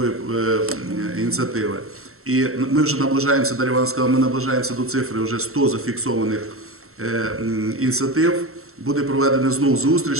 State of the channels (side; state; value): left; late; 0.63 ms